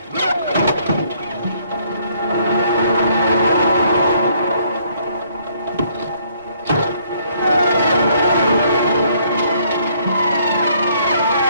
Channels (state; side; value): inverted; both; correlation -0.66